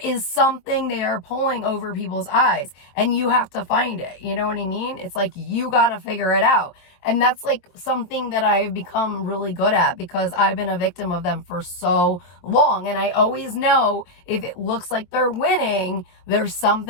is something they are pulling over people's eyes, and you have to find it. You know what I mean? It's like, you got to figure it out. And that's like something that I've become really good at, because I've been a victim of them for so long. And I always know if it looks like they're winning, there's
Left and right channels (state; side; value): late; right; 23 ms